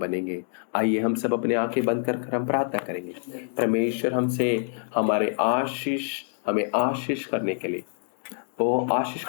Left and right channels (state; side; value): silent; right; digital silence